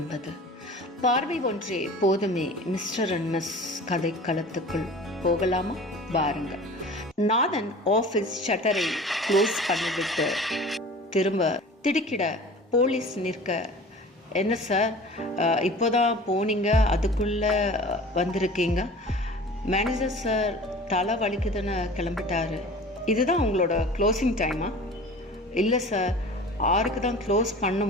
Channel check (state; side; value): normal; both; correlation 0.41